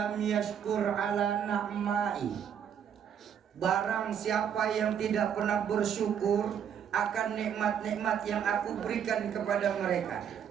yashkur ala na'mai. Barang siapa yang tidak pernah bersyukur akan nikmat-nikmat yang aku berikan kepada mereka.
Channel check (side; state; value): left; quieter; 8.4 dB